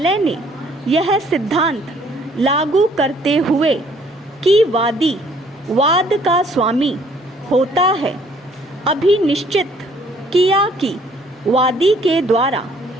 ने यह सिद्धांत लागू करते हुए कि वादी वाद का स्वामी होता है, अभिनिश्चित किया कि वादी के द्वारा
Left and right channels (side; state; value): both; normal; correlation 0.61